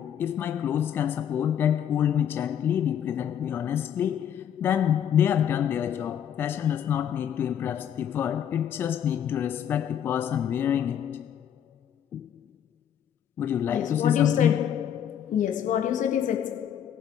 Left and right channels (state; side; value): quieter; right; 9.4 dB